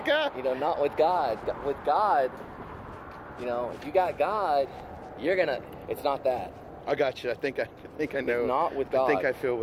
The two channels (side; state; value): both; identical; correlation 1.00